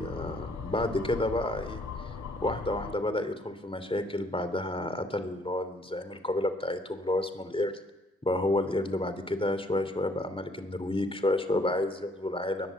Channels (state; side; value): normal; both; correlation 0.64